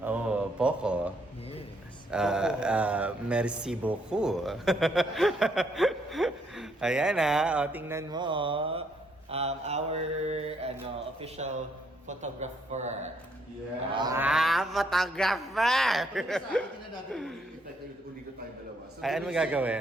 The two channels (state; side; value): normal; both; correlation 0.72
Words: Oh, poco. Yes. Merci beaucoup. Ayan tingnan mo. Our official photographer. Yeah. Photographer! Sa akin na natin uligo tayo dalawa. So, Ay, ano